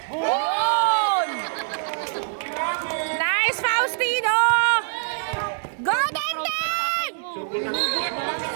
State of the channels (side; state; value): left; silent; digital silence